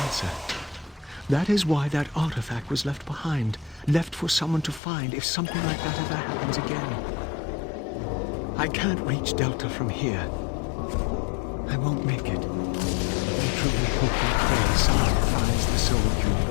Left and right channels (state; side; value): drops out; right; at 4.8 s